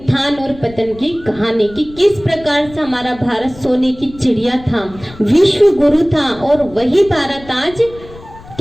और पतन की कहानी की, किस प्रकार से हमारा भारत सोने की चिड़िया था, विश्व गुरु था, और वही भारत आज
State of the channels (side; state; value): left; noise; rumble, 19 dB below the sound